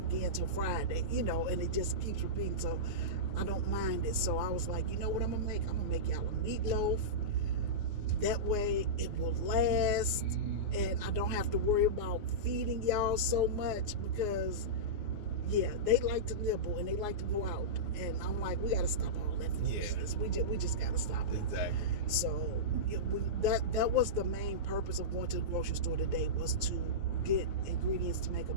again till Friday, and it just keeps repeating. So I don't mind it. So I was like, you know what I'm going to make? I'm going to make y'all a meatloaf. That way it will last, and I don't have to worry about feeding y'all so much, because yeah, they like to nibble and they like to go out, and I'm like, we got to stop all that foolishness. We just got to stop it. Exactly. So that was the main purpose of going to the grocery store today, was to get ingredients to make a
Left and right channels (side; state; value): left; late; 9.6 ms